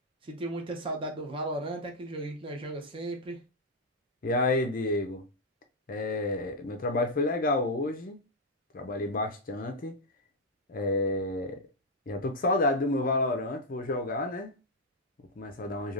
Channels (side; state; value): both; normal; correlation -0.01